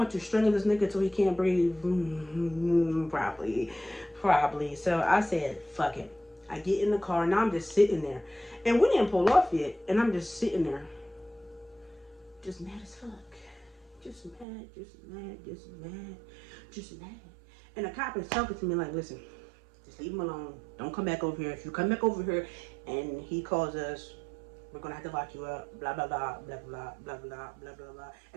to strangle this nigga till he can't breathe? Probably. So I said, fuck it. I get in the car, and now I'm just sitting there. And we didn't pull off yet, and I'm just sitting there. Just mad as fuck. Just mad. And the cop is talking to me like, listen, just leave him alone. Don't come back over here. If you come back over here and he calls us, we're gonna have to lock you up, blah blah blah blah blah blah blah blah blah blah.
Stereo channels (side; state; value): left; drops out; at 14.5 s